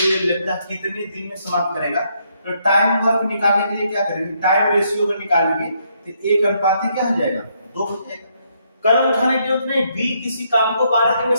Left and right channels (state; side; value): inverted; both; correlation -0.74